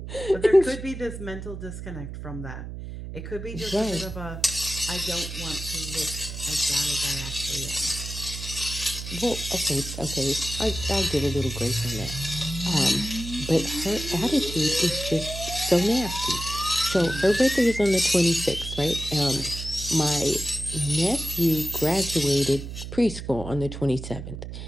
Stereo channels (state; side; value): noise; right; hum, 9 dB below the sound